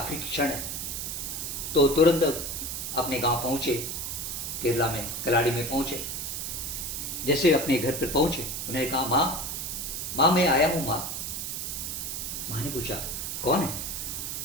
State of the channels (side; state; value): right; noise; hiss, 4 dB below the sound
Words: क्षण है। तो तुरंत अपने गांव पहुंचे, केरला में कलाड़ी में पहुंचे। जैसे अपने घर पर पहुंचे, उन्होंने कहा, माँ मैं आया हूँ माँ। माँ ने पूछा, कौन है?